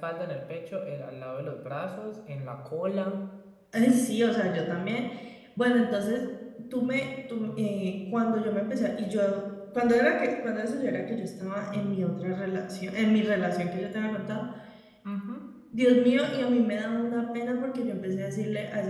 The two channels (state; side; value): identical; both; correlation 1.00